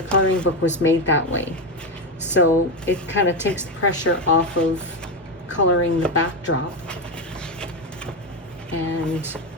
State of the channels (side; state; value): both; normal; correlation 0.12